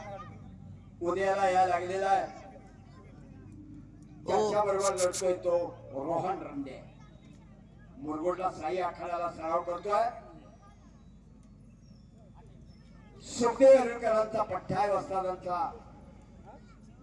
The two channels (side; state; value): both; identical; correlation 1.00